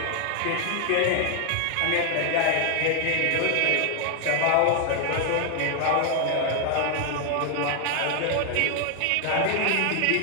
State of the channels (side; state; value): both; different; correlation 0.00